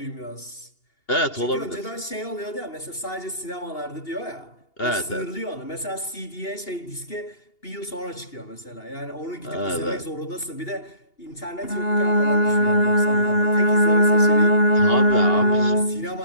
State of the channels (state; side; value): late; right; 2.8 ms